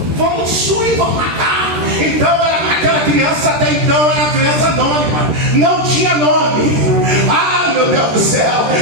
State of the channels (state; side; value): late; left; 13 ms